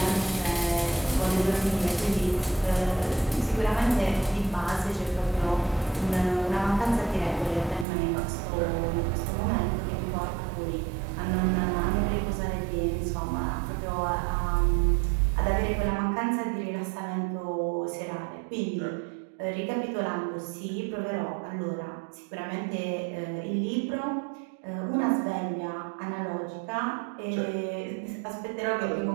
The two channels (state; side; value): drops out; left; at 7.9 s